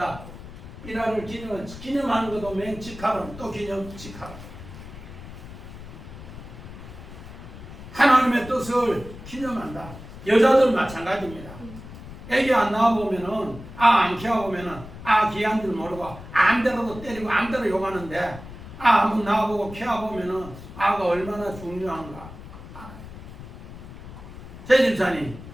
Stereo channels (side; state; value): left; noise; rumble, 14 dB below the sound